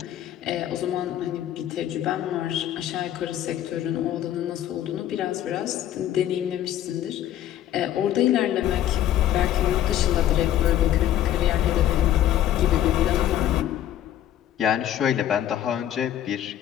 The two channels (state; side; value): quieter; right; 11.7 dB